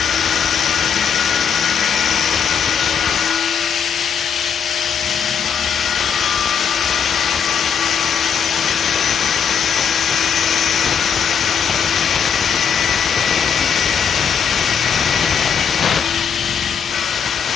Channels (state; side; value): quieter; right; 7.3 dB